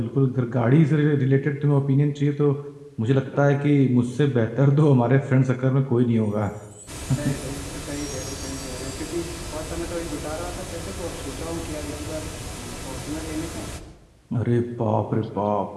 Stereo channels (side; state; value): both; identical; correlation 1.00